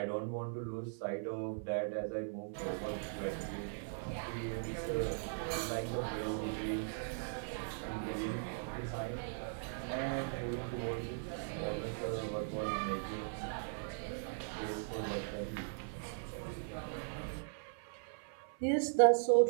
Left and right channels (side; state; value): left; silent; 52 dB below the other